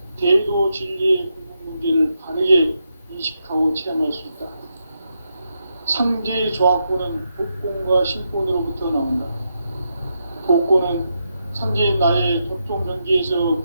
대도 진리의 궁극 문제를 바르게 인식하고 체험할 수 있다. 상제의 조합권은 복권과 신권으로부터 나온다. 복권은 상제인 나의 도통 경계에서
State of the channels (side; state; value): both; inverted; correlation -0.84